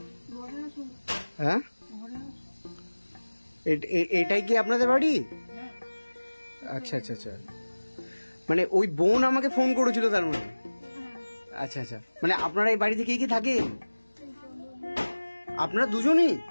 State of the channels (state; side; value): inverted; both; correlation -1.00